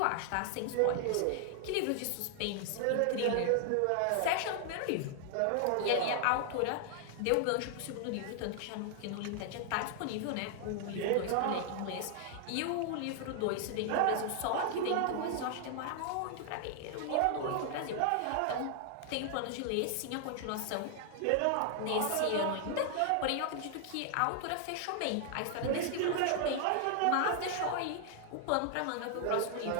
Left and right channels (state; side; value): different; both; correlation 0.00